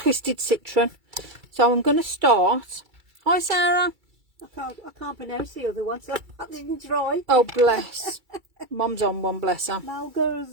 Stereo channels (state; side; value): late; left; 2.3 ms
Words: citron. So I'm going to start. Hi Sarah. I can't pronounce the other one, so I didn't try. Oh bless. Mum's on one, bless her.